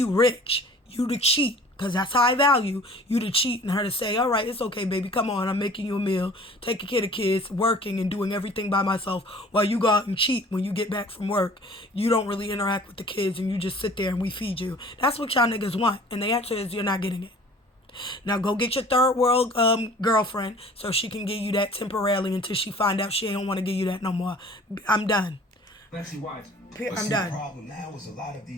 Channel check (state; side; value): normal; both; correlation 0.48